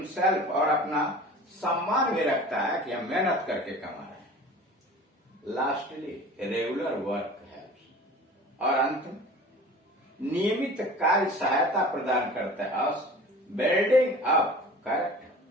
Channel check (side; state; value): both; normal; correlation 0.41